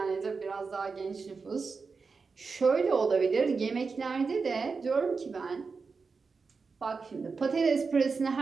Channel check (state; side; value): quieter; left; 4.8 dB